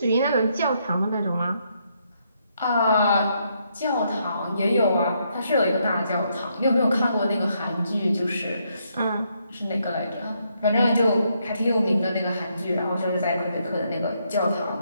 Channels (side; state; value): both; inverted; correlation -0.76